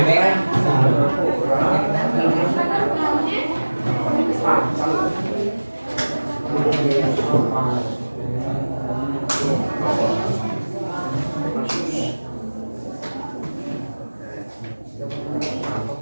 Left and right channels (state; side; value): inverted; both; correlation -1.00